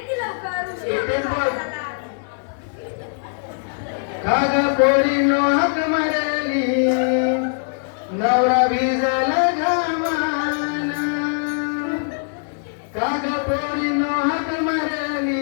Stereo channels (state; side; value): silent; right; digital silence